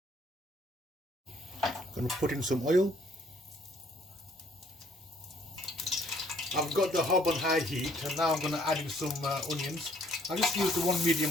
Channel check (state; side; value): normal; both; correlation 0.63